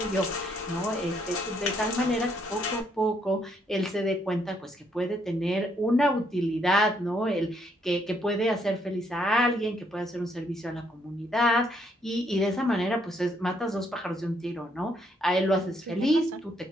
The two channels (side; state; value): both; normal; correlation 0.72